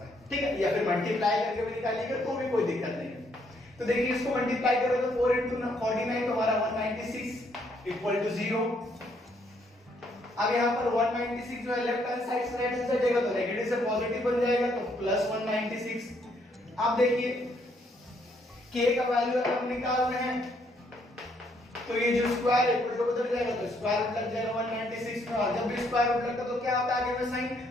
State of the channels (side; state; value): both; normal; correlation 0.70